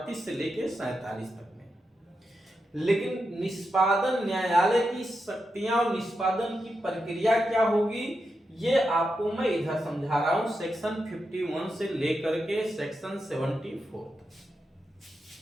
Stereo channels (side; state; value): both; normal; correlation 0.87